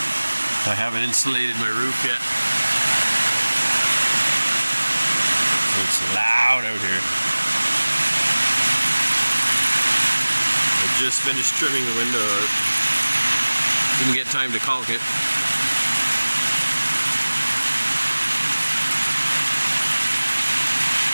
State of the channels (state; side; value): inverted; both; correlation -1.00